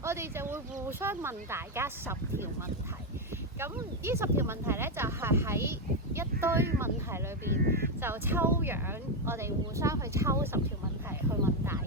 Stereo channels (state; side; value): normal; both; correlation 0.06